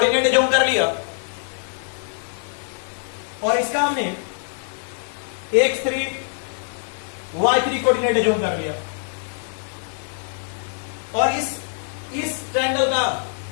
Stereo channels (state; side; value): silent; right; digital silence